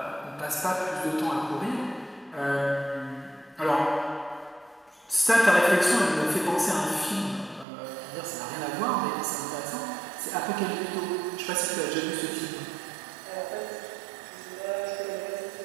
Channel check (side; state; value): left; drops out; at 7.7 s